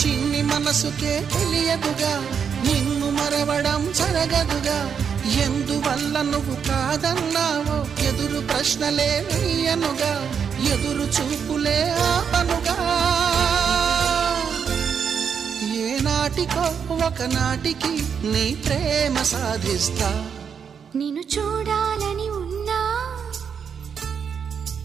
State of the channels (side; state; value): left; quieter; 7.0 dB